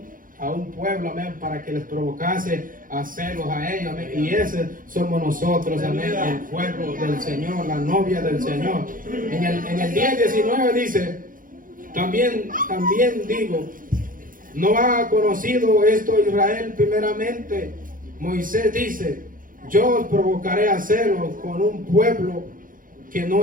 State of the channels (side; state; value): left; late; 0.40 ms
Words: a un pueblo, amén, para que les provocase a hacerlos a ellos, amén. Y ese somos nosotros, amén, el pueblo del Señor, la novia del Señor. En el 10:19 dice, también digo, ¿no ha conocido esto Israel primeramente? Moisés dice, yo os provocaré a hacerlo con un pueblo que